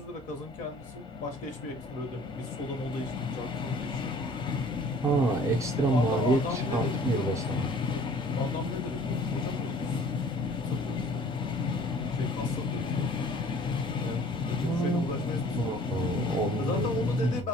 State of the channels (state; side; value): normal; both; correlation 0.51